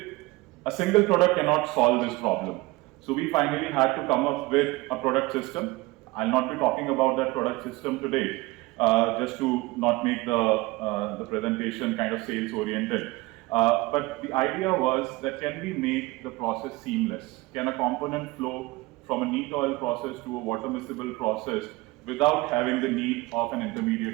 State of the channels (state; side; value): quieter; left; 21.6 dB